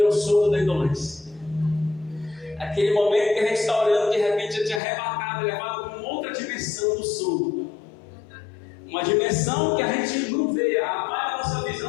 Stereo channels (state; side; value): drops out; right; at 4.8 s